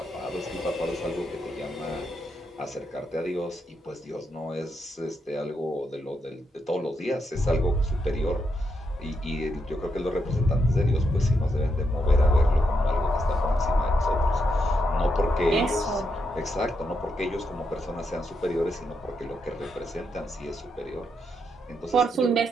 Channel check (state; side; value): normal; both; correlation 0.81